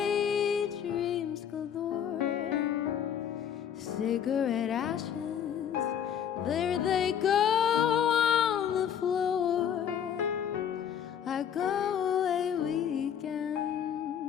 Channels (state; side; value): quieter; right; 8.8 dB